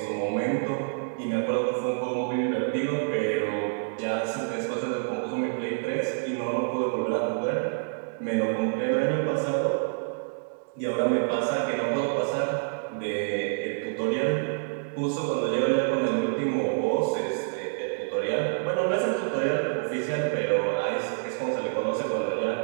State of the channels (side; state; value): left; silent; digital silence